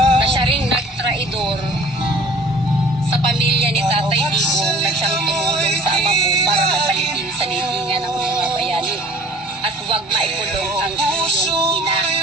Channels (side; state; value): both; normal; correlation 0.50